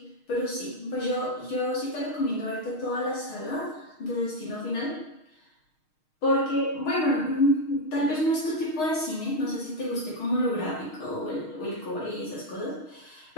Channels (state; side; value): late; right; 6.4 ms